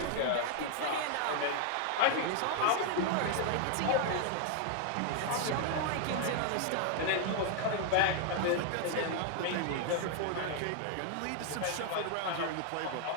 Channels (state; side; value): different; both; correlation 0.00